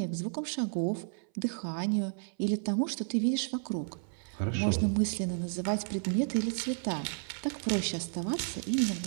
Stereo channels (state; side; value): silent; left; 56 dB below the other